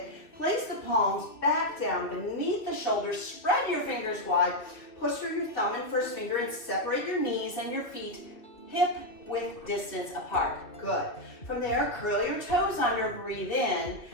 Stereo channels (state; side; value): late; right; 2.3 ms